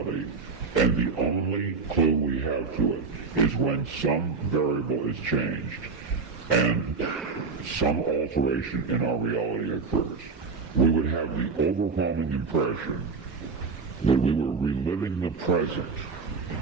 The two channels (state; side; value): quieter; left; 4.6 dB